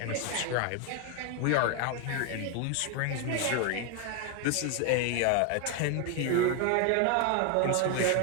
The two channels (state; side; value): different; both; correlation 0.01